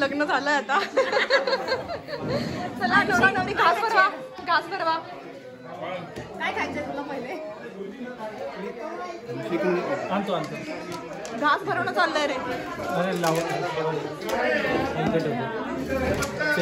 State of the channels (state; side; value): identical; both; correlation 1.00